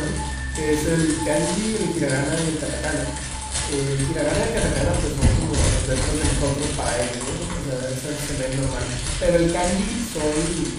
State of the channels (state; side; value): identical; both; correlation 1.00